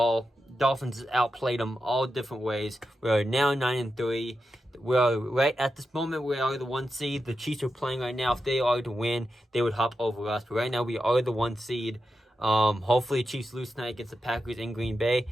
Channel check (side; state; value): both; normal; correlation 0.89